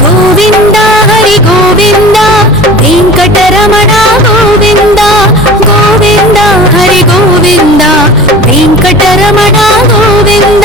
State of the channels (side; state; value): both; normal; correlation 0.39